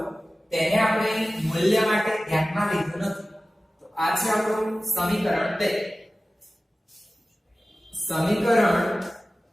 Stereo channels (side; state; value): both; normal; correlation 0.96